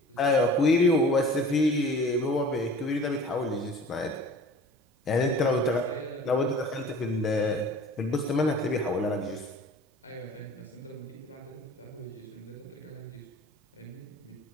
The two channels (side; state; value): both; normal; correlation 0.45